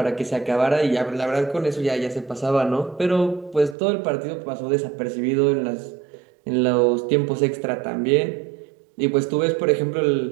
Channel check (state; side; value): drops out; left; at 3.8 s